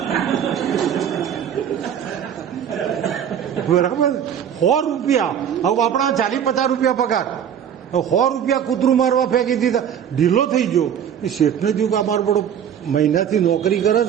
બરાબર, 100 રૂપિયા. હવે આપણા 40-50 રૂપિયા પગાર, 100 રૂપિયા કૂતરું મારવા ફેંકી દીધા, ઢીલો થઈ ગયો. એ શેઠને થયું કે આ મારો બડો મહિનાથી નોકરી કરે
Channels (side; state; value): left; quieter; 8.8 dB